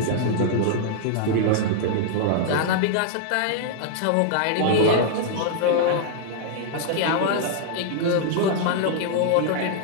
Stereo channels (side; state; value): both; different; correlation -0.01